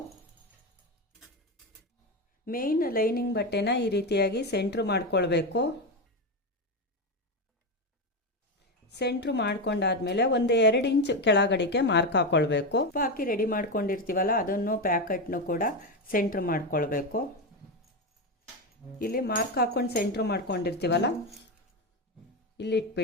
ಮೇನ್ ಲೈನಿಂಗ್ ಬಟ್ಟೆನ ಈ ರೀತಿಯಾಗಿ ಸೆಂಟ್ರ್ ಮಾಡ್ಕೊಳ್ಬೇಕು. ಸೆಂಟ್ರ್ ಮಾಡ್ಕೊಂಡಾದ್ಮೇಲೆ ಒಂದು 2 ಇಂಚ್ ಕೆಳಗಡೆಗೆ ಮಾರ್ಕ್ ಹಾಕ್ಕೊಳ್ಬೇಕು. ಹಾಕಿ ರೆಡಿ ಮಾಡ್ಕೊಂಡಿರ್ತೀವಲ್ಲ ಅದನ್ನು ಪ್ಯಾಕೆಟ್ನು ಕೂಡ ಸೆಂಟ್ರ್ ಮಾಡ್ಕೊಳ್ಬೇಕು. ಇಲ್ಲಿ ಮಾರ್ಕ್ ಹಾಕೊಂಡು ಸೆಂಟ್ರ್ ಮಾಡ್ಕೊಂಡಿರ್ತೀವಲ್ಲ ಇಲ್ಲಿ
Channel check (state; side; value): normal; both; correlation 0.13